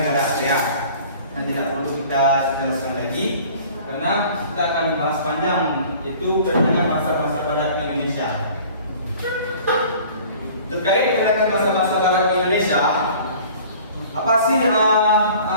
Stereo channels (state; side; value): inverted; both; correlation -0.48